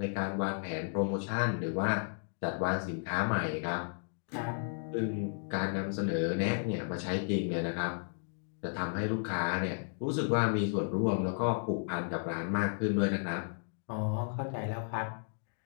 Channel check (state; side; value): silent; right; digital silence